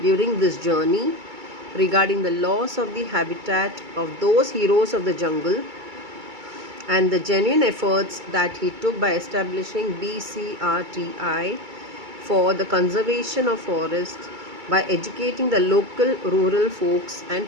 during this journey regarding the loss of the habitat of those heroes of the jungle, and the genuine efforts that he took by establishing BCRTI for the conservation of forests by educating the local rural folks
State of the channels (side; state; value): left; late; 2.3 ms